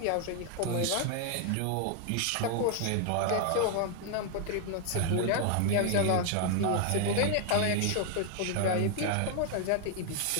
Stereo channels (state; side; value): different; both; correlation 0.00